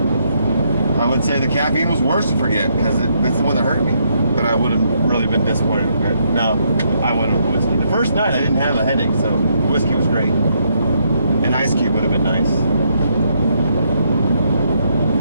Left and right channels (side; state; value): both; inverted; correlation -0.75